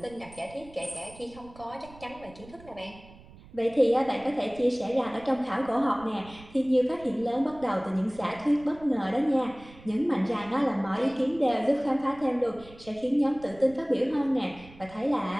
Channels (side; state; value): right; noise; rumble, 21 dB below the sound